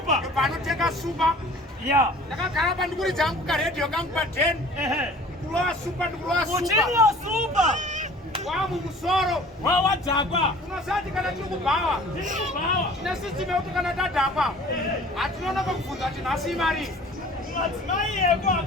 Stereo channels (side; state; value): both; normal; correlation 0.48